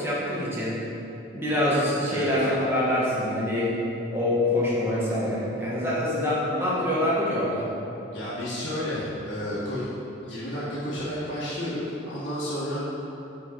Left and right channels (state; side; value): normal; both; correlation 0.32